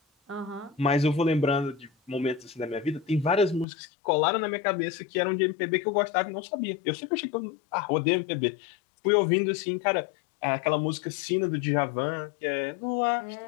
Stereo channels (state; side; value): drops out; right; at 3.7 s